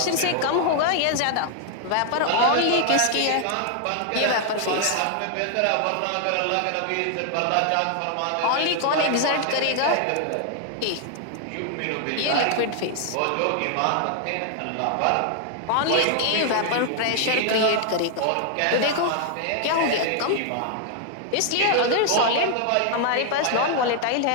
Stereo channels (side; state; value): both; different; correlation 0.00